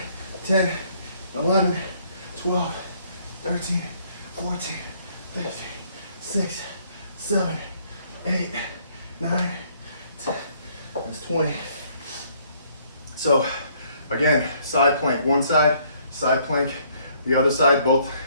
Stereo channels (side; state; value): both; inverted; correlation -0.65